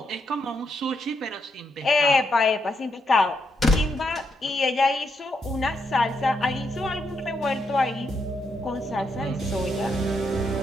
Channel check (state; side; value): normal; both; correlation 0.79